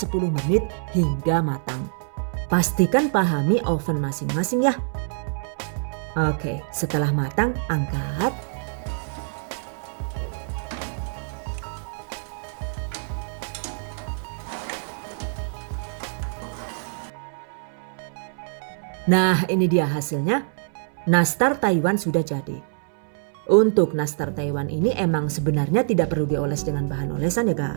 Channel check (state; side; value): silent; left; 59 dB below the other